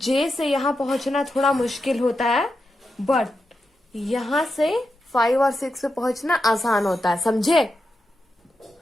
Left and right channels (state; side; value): normal; both; correlation 0.88